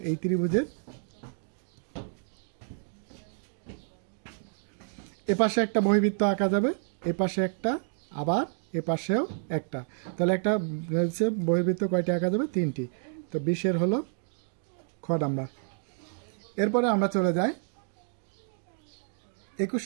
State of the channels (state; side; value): silent; left; digital silence